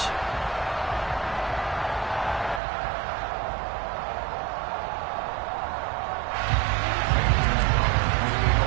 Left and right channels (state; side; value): drops out; left; at 2.6 s